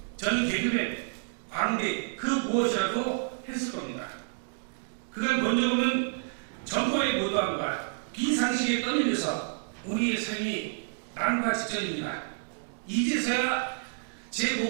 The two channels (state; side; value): silent; left; digital silence